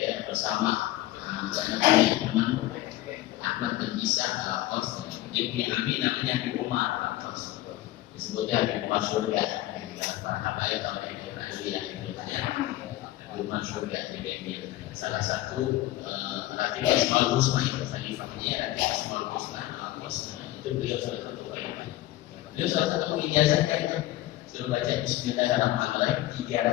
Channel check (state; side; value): quieter; right; 15.9 dB